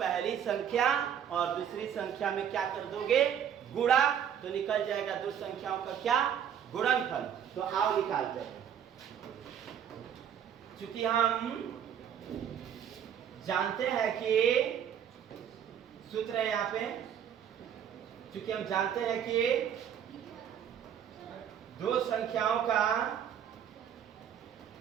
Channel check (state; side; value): quieter; left; 8.9 dB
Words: संख्या और दूसरी संख्या में क्या कर दोगे? गुणा, तो निकल जाएगा दो संख्याओं का क्या? गुणनफल। तो आओ निकालते हैं। चूंकि हम जानते हैं कि सूत्र है यहाँ पे, चूंकि हम जानते हैं कि दो संख्याओं का